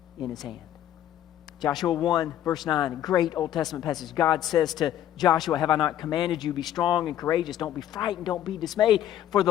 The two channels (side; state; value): right; quieter; 11.5 dB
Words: in His hand. Joshua 1, verse 9, a great Old Testament passage. God says to Joshua, have I not commanded you, be strong and courageous, don't be frightened, don't be dismayed, for